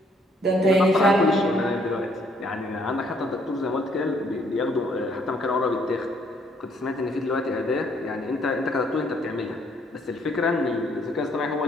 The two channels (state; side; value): normal; both; correlation 0.66